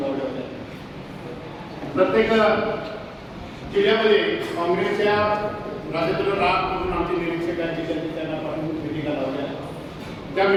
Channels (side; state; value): both; identical; correlation 1.00